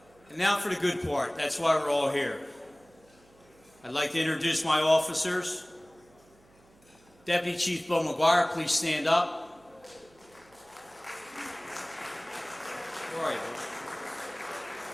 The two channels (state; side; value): noise; right; hum, 29 dB below the sound